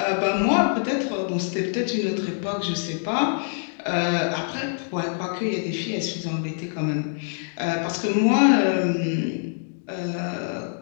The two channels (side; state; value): right; silent; digital silence